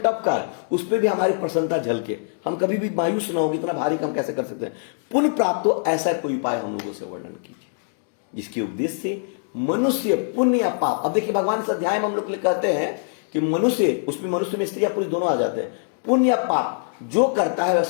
कार्य, उस पर भी हमारी प्रसन्नता झलके, हम कभी भी मायूस ना हो, इतना भारी काम कैसे कर सकते हैं। पुण्य प्राप्त हो, ऐसा कोई उपाय हम लोगों से वर्णन कीजिए जिसके उपदेश से मनुष्य पुण्य या पाप। अब देखिए, भगवान इस अध्याय में हम लोग कहते हैं कि मनुष्य, उसमें मनुष्य में स्त्री या पुरुष दोनों आ जाते हैं। पुण्य या पाप जो करता है वह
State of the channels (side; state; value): right; silent; digital silence